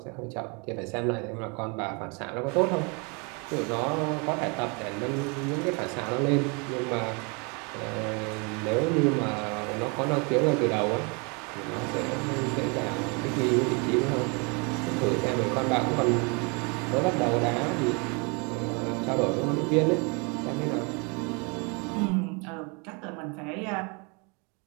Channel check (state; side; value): quieter; left; 32.1 dB